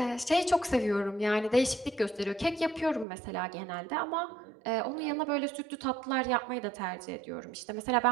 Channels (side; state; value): left; drops out; at 3.1 s